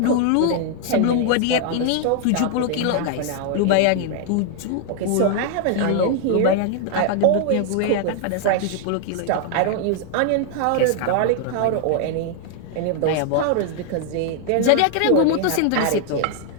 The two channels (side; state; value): both; different; correlation 0.00